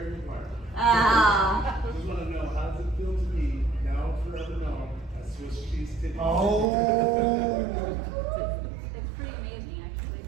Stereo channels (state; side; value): drops out; left; at 6.7 s